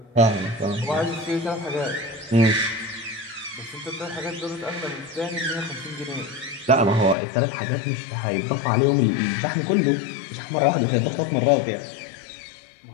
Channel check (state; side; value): drops out; right; at 7.2 s